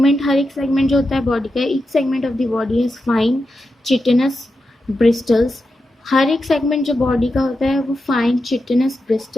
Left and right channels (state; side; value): normal; both; correlation 0.88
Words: हर एक सेगमेंट जो होता है बॉडी का, each segment of the body has fine chitinous bristles. हर एक सेगमेंट जो बॉडी का होता है वो फाइन चिटिनस